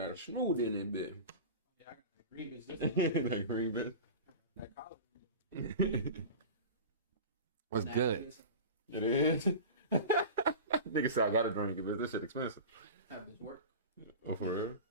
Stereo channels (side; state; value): both; inverted; correlation -0.32